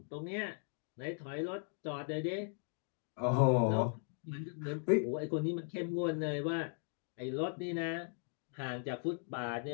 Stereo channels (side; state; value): right; silent; 52 dB below the other